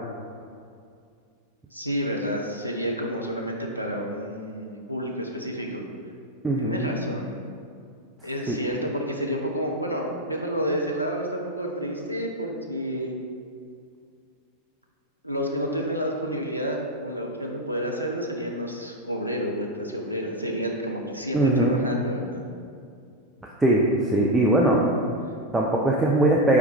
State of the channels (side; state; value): both; normal; correlation 0.05